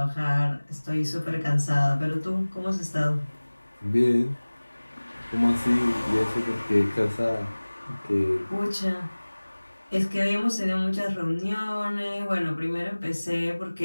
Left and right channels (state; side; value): inverted; both; correlation -1.00